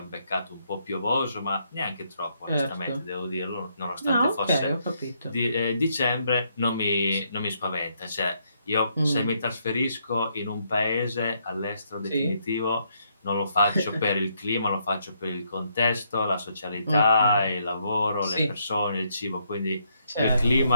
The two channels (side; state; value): both; inverted; correlation -0.75